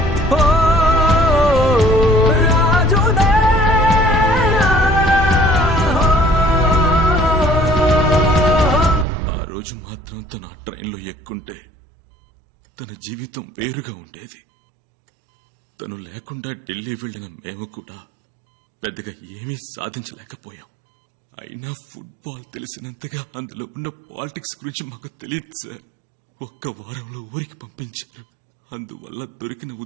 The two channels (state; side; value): drops out; left; at 9.1 s